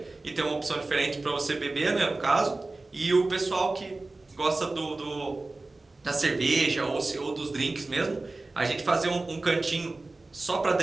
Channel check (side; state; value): left; quieter; 3.2 dB